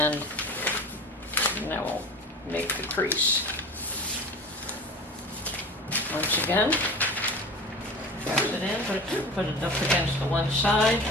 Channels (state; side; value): normal; both; correlation 0.36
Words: now we'll make the crease. Once again, press it in, put it up against the one side,